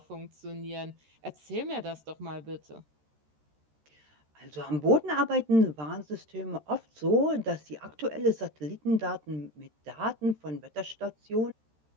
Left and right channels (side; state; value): left; late; 13 ms